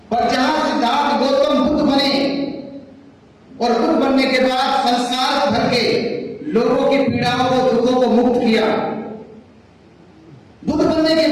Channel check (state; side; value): identical; both; correlation 1.00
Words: पर जहां सिद्धार्थ गौतम बुद्ध बने और बुद्ध बनने के बाद संसार भर के लोगों की पीड़ाओं को, दुखों को मुक्त किया, बुद्ध बनने के